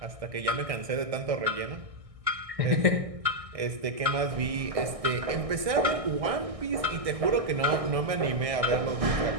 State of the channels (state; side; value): late; left; 1.6 ms